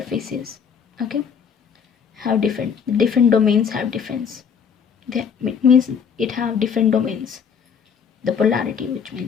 Okay, have different domains have difference. It means it have different domains, the polarity, which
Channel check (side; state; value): right; quieter; 6.8 dB